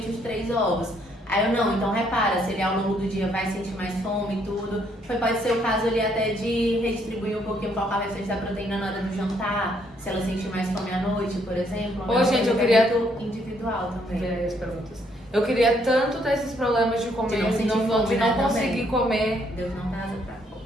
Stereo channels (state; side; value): normal; both; correlation 0.69